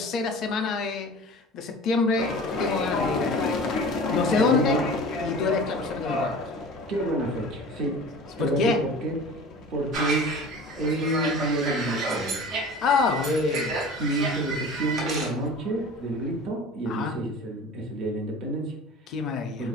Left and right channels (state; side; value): normal; both; correlation 0.39